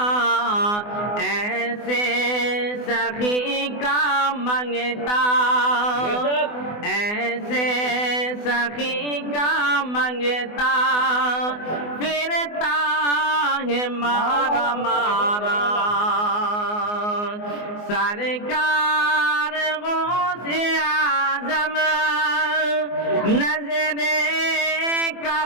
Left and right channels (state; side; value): late; right; 24 ms